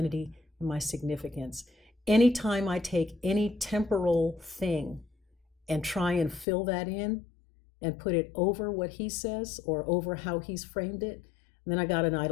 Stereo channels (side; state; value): right; drops out; at 6.5 s